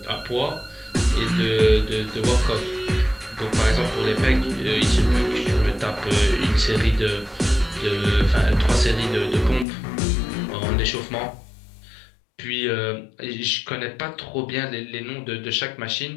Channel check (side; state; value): right; drops out; at 9.7 s